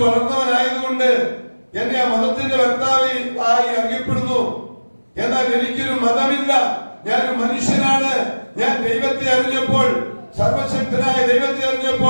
വളർന്നവനായതുകൊണ്ട് എന്നെ ആ മതത്തിന്റെ വക്താവ് ആയി അറിയപ്പെടുന്നു. എന്നാൽ എനിക്കൊരു മതമില്ല. ഞാനൊരു മനുഷ്യനാണ്. ഞാൻ ദൈവത്തെ അറിഞ്ഞപ്പോൾ, സർവശക്തനായ ദൈവത്തെ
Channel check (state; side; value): inverted; both; correlation -1.00